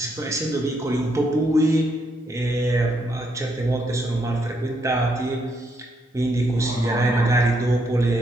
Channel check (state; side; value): normal; both; correlation 0.76